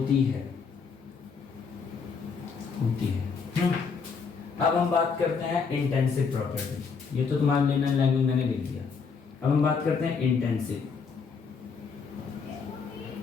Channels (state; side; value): quieter; right; 5.5 dB